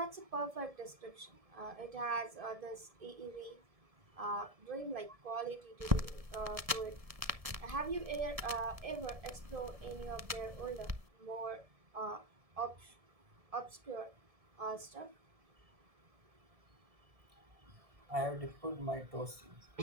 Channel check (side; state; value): left; late; 1.7 ms